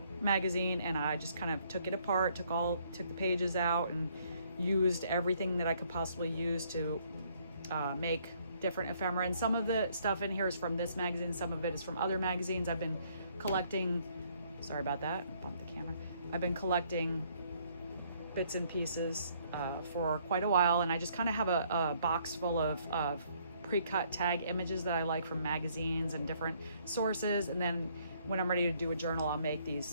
magazine and I just kind of took it apart, took the pages out and used everything that I could possibly use to make different ephemera. And some of the stuff in here is from this magazine, some of it is from other magazines. I've been collecting, sorry about that, bumped the camera. I've been collecting bits and pieces for quite a while, and I just kind of have a box full of pre-cut tag images that I like from magazines and different sources. And then when I'm ready to do a journal, I'll make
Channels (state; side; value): inverted; both; correlation -0.66